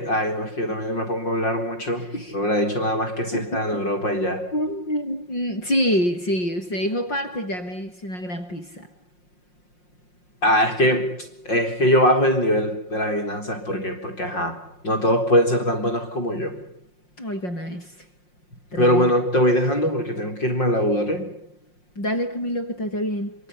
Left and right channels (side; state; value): right; late; 5.6 ms